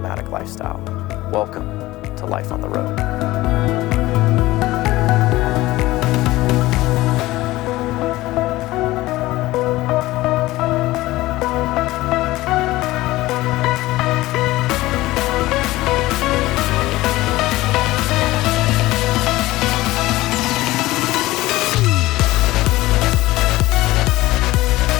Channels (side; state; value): right; quieter; 18.1 dB